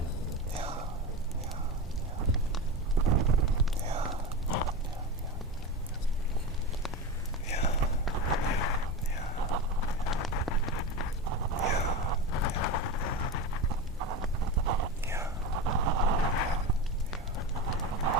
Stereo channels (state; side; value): normal; both; correlation 0.22